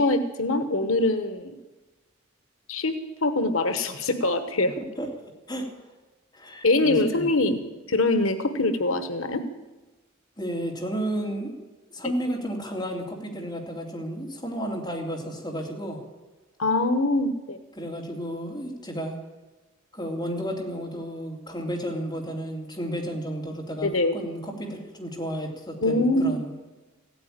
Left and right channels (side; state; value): both; normal; correlation 0.15